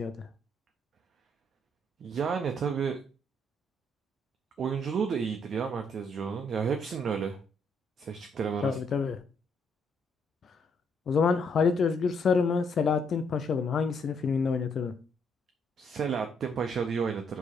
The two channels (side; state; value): both; normal; correlation 0.71